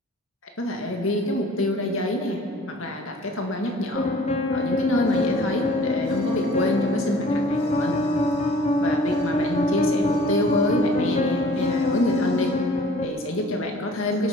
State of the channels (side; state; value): both; normal; correlation 0.50